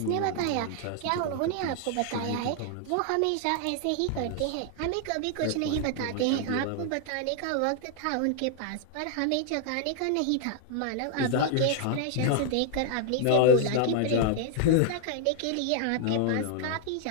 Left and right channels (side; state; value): both; different; correlation 0.00